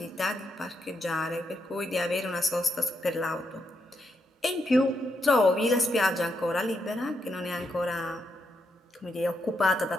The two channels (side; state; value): both; normal; correlation 0.81